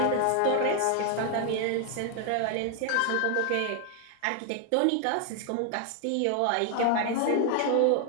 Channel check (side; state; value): both; different; correlation 0.00